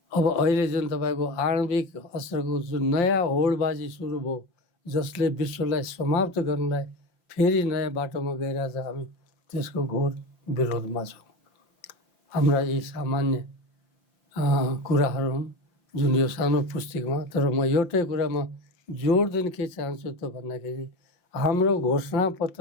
अब अहिले जुन तपाईँको आणविक अस्त्रको जुन नयाँ होडबाजी सुरु भयो, जसले विश्वलाई समाप्त गर्नलाई फेरि नयाँ बाटोमा गइरहेछ, हामी त्यसको घोर विरोधमा छौँ। हाम्रा यी सामान्य कुराहरू हुन् जुन यो सानो पुस्तिकामा। तर म एउटै कुरामा जोड दिन के चाहन्छु त भन्दाखेरि हाम्रो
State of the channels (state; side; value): late; right; 5.7 ms